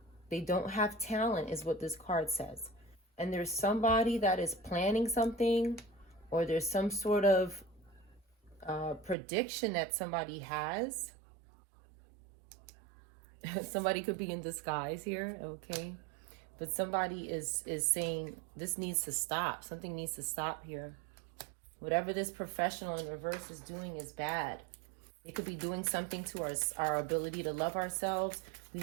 They don't have talent is what this card says. And there's somebody that is planning something, or there's some sort of prediction that somebody has. Somebody could be in disguise here, okay? But somebody is saying this needs to stop. Something needs to stop here. Whatever this professional in reverse is doing is bad. It could be doing something to our ability to love ourselves. We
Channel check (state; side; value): drops out; left; at 9.2 s